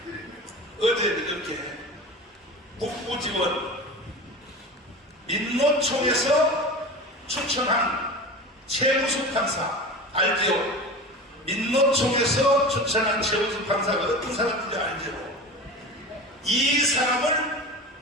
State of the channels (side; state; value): both; normal; correlation 0.32